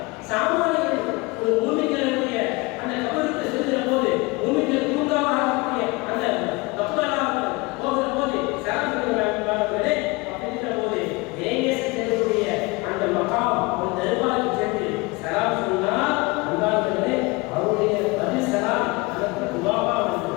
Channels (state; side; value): quieter; right; 24.9 dB